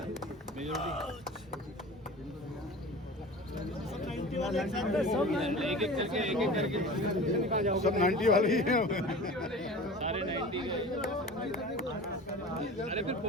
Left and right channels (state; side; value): normal; both; correlation 0.37